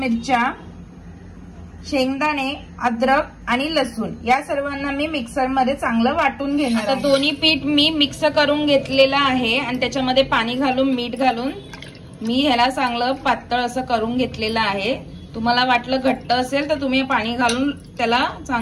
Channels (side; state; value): both; identical; correlation 1.00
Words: शेंगदाणे, अद्रक आणि लसूण या सर्वांना मी मिक्सर मध्ये चांगलं वाटून घेणार आहे। दोन्ही पीठ मी मिक्स करून घेतलेलं आहे आणि त्याच्यामध्ये पाणी घालून मीठ घालून मी ह्याला चांगलं पातळ असं करून घेतलेलं आहे। तुम्हाला वाटलं घट्ट असेल तर तुम्ही पाणी घालून त्याला